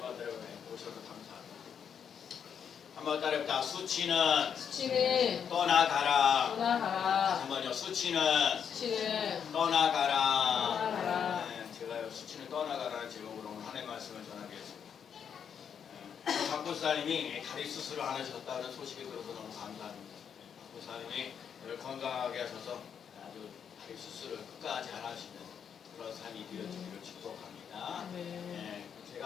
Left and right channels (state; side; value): quieter; right; 7.7 dB